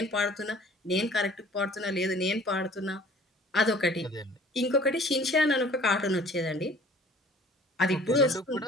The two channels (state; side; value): normal; both; correlation 0.51